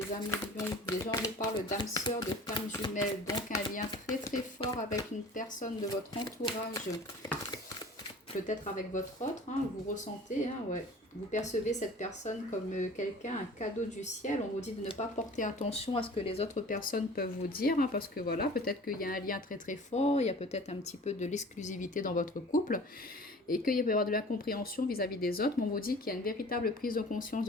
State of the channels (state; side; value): normal; both; correlation 0.44